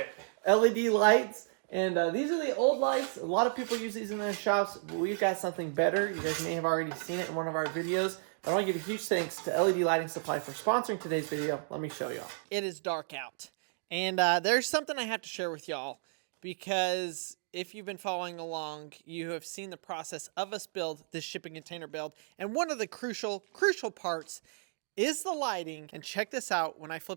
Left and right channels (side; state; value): left; silent; digital silence